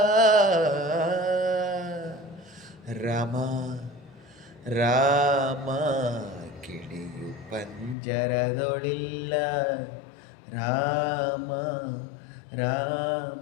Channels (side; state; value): right; drops out; at 8.0 s